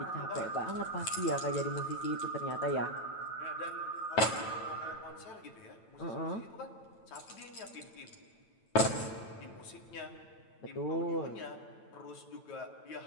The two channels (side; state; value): right; late; 9.0 ms